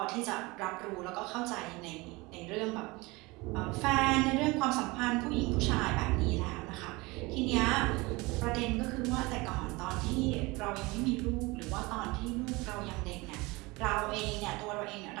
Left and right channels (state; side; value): quieter; left; 23.6 dB